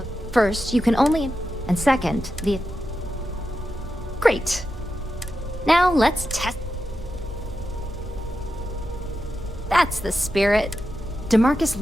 First, you can only... And second, the... Great. Now, let's test... That's the spirit. DeMarcus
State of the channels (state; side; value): normal; both; correlation 0.89